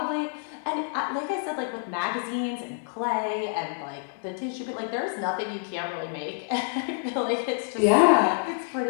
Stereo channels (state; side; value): silent; right; 60 dB below the other